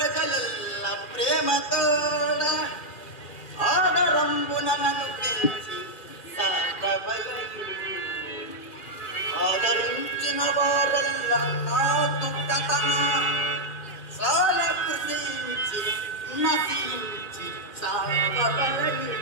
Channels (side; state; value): right; late; 2.4 ms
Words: ప్రేమతోడ ఆదరంబున నన్ను పెంచి సాకబలయు. ఆదరించిన వారల్ల నాకు కథన సాల కృషించి నశించి సాకబలయు.